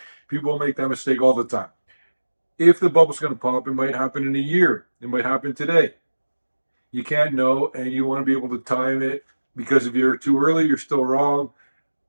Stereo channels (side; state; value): both; inverted; correlation -1.00